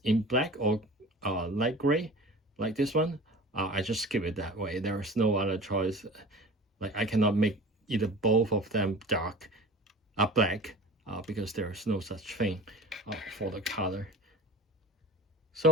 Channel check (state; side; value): normal; both; correlation 0.38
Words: in black or light gray, like this one. I just skip it that way. There is no other choice. Like I cannot make either both of them dark black because there is no such thing for the color.